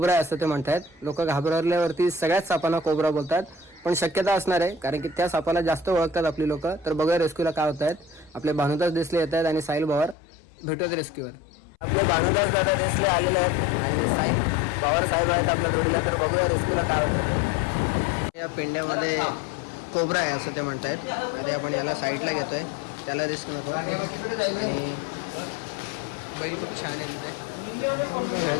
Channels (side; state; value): right; drops out; at 10.2 s